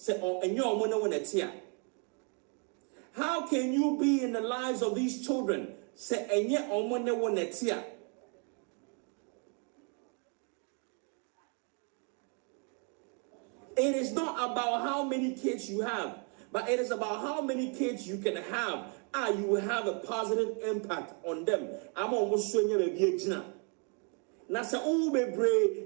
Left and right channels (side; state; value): left; quieter; 38.4 dB